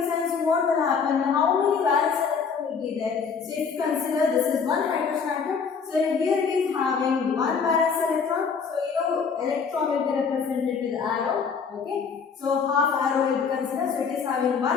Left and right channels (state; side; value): quieter; right; 5.9 dB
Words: sense what will happen? How many valence will be there? So if you consider this is one hydrogen atom, so here it is having one valence electron. So electron will be represented with arrow. Okay, so half arrow will be considered. So it is having